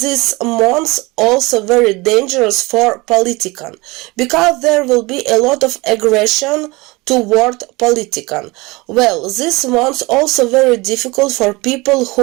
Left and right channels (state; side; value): quieter; left; 23.5 dB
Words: month also very dangerous for politicians, because there will be a lot of aggression toward politicians. Well, this month also very difficult for people